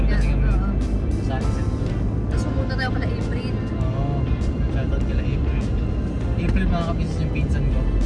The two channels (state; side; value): identical; both; correlation 1.00